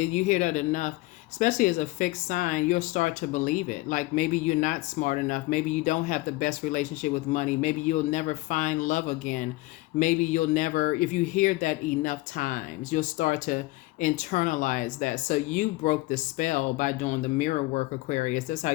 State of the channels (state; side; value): quieter; right; 20.6 dB